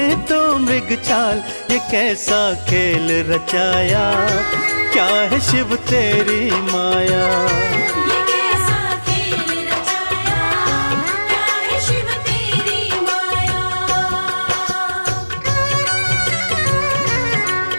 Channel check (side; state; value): both; inverted; correlation -1.00